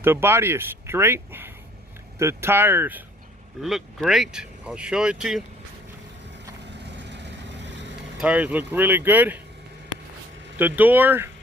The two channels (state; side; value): normal; both; correlation 0.57